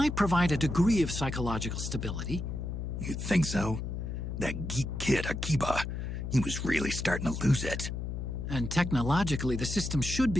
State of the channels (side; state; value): left; noise; hum, 4 dB below the sound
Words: provide a degree of psychological stability. You'd think so? That geek kid, Akiba, he was really starting to lose it. And technologically, the system should